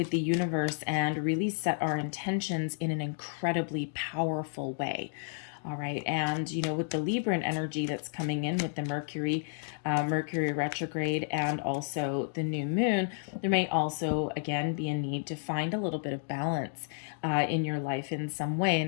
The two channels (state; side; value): silent; right; digital silence